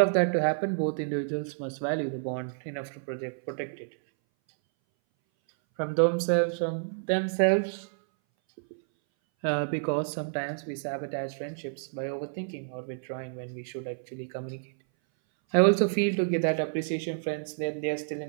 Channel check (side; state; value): left; silent; 58 dB below the other